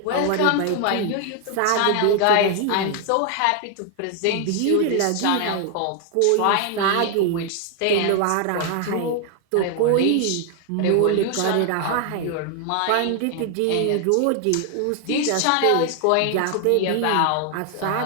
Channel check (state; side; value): different; both; correlation 0.00